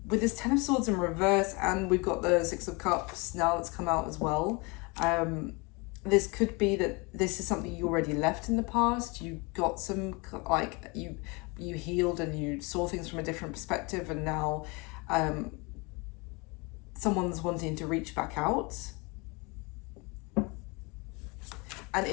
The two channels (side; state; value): right; quieter; 28.1 dB